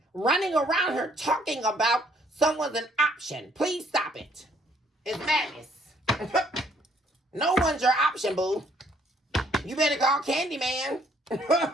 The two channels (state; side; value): normal; both; correlation 0.64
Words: Running around here talking about someone's an option. Please stop it. It's madness. No one's your option, boo. You better call Candyman.